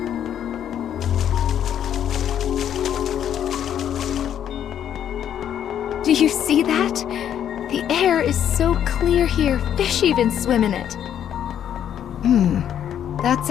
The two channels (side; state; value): right; quieter; 9.8 dB